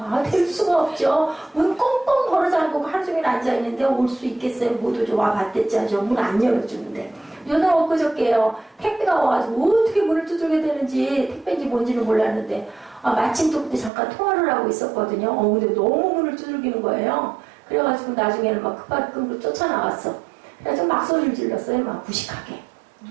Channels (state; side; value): drops out; left; at 13.9 s